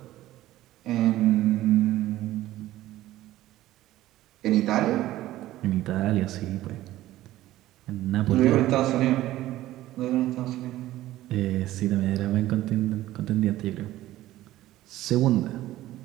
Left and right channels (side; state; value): left; quieter; 15.2 dB